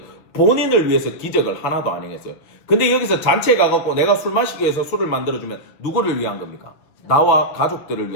본인을 위해서 기적을 하나도 안 행했어요. 근데 여기서 잔치에 가갖고 내가 술 마시기 위해서 술을 만들어주면 누구를 위한 겁니까? 나와 가족들을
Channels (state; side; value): late; right; 6.7 ms